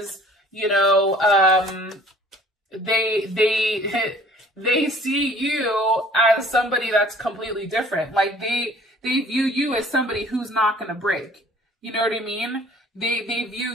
you know, they see you as somebody that's completely different. Like they view you as somebody who's not going to break. You know what I mean? They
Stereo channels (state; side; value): normal; both; correlation 0.53